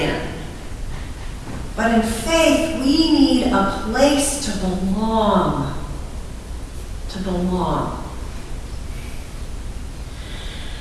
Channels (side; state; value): both; identical; correlation 1.00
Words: in, but in faith, we need a place to belong. To belong.